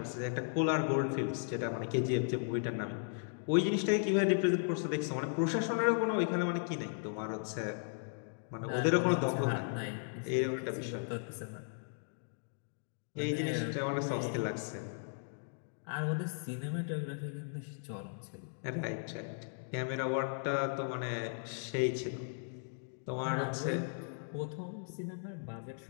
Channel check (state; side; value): silent; right; digital silence